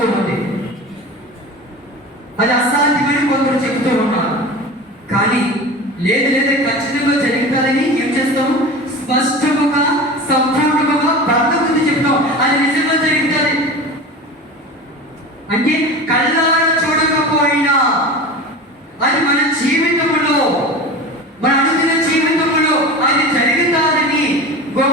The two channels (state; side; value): normal; both; correlation 0.32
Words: అది అసాధ్యమని కొందరు చెబుతూ ఉన్నారు. కానీ లేదు ఖచ్చితంగా జరుగుతుందని ఏం చేస్తాము? స్పష్టముగా, సంపూర్ణముగా బద్దకుంది చెప్తాం. అది నిజంగా జరుగుతుంది. అంటే కళ్ళారా చూడకపోయినా అది మన జీవితంలో, మన అనుదిన జీవితంలో అది జరుగుతుందని